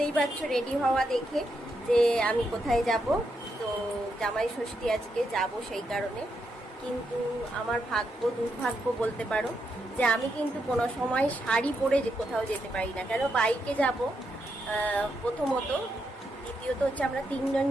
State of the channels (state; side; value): normal; both; correlation 0.82